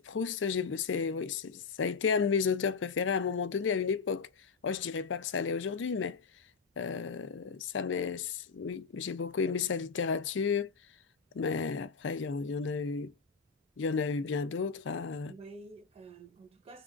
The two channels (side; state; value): right; quieter; 5.3 dB